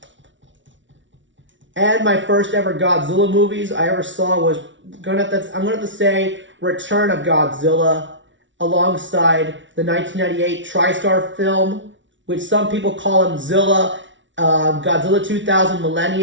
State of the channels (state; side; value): late; left; 0.55 ms